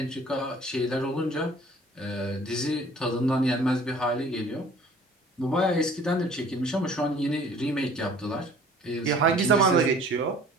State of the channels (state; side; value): normal; both; correlation 0.51